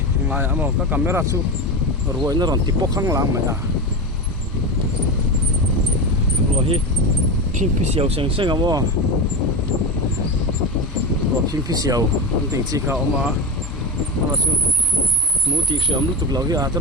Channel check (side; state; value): both; normal; correlation 0.21